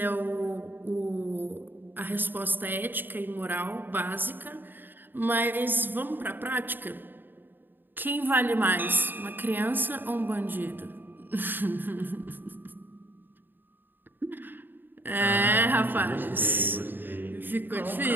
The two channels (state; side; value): late; left; 0.093 ms